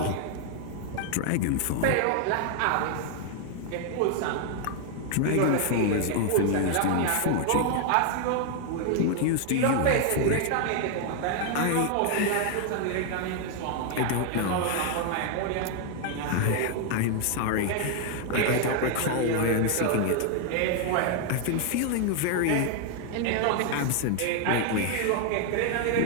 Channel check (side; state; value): both; different; correlation 0.00